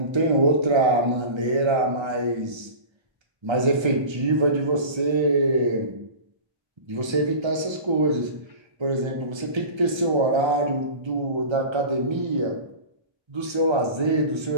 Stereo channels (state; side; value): late; left; 1.3 ms